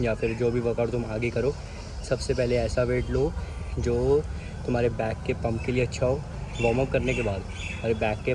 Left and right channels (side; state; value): both; identical; correlation 1.00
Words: या फिर जो भी वर्कआउट तुम आगे करो, सबसे पहले ऐसा वेट लो जो तुम्हारे बैक के पंप के लिए अच्छा हो, वार्म अप करने के बाद तुम्हारे बैक के